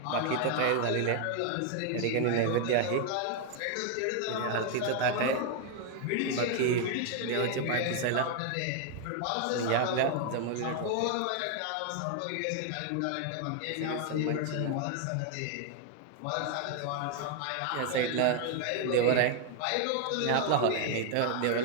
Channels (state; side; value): different; both; correlation 0.00